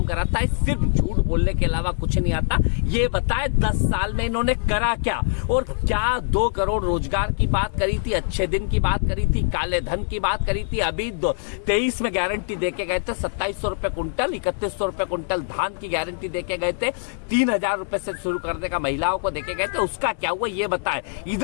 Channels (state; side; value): silent; right; 63 dB below the other